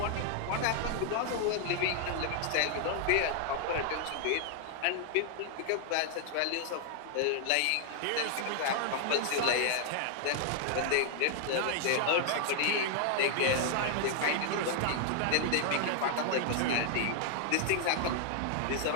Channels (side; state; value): both; different; correlation 0.00